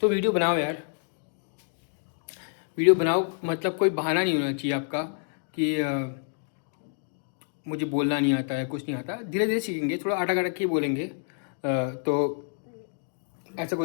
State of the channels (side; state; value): right; silent; digital silence